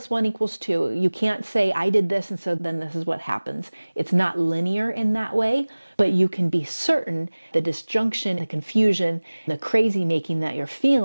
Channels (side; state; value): both; inverted; correlation -1.00